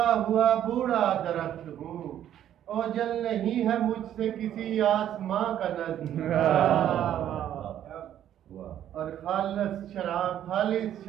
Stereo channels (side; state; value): left; quieter; 11.0 dB